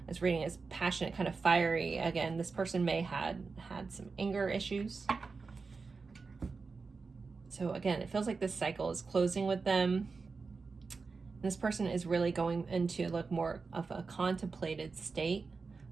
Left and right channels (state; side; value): quieter; left; 4.5 dB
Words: It's reading as passionate, kind of fiery. Again, this person may had some anger issues. So again, it feels like this cycle is closing with them. This person is really going into like more of a contemplated state,